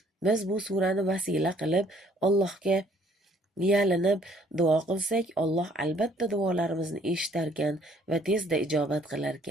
Biz bu surani vasila qilib Allohga yalinib duo qilsak, Alloh albatta duolarimizni eshitarkan va tezda ijobat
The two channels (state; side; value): normal; both; correlation 0.61